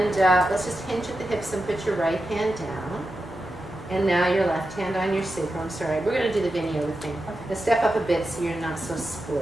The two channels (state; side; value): normal; both; correlation 0.90